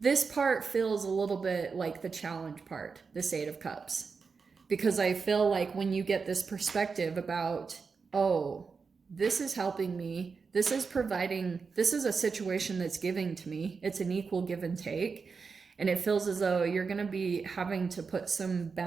part feels a little bit like the challenge part, this Eight of Cups. Because I feel like when you get this perspective about, oh, this is helping me, this is providing, this is a situation that's giving to me, it's an equal give and take. And it feels as though you're going to be having to put some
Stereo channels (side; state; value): left; quieter; 5.1 dB